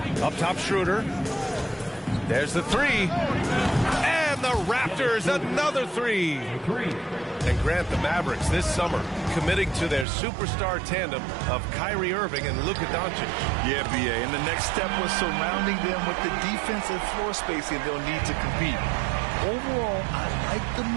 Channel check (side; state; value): left; drops out; at 10.1 s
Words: Up top, Schroeder. There's the three. And the Raptors, another three. And Grant, the Mavericks this summer committing to their superstar tandem of Kyrie Irving and Luka Doncic. Yeah, B.A., and the next step was surrounding them with the defense and floor spacing they'll need to compete. Overall, I like the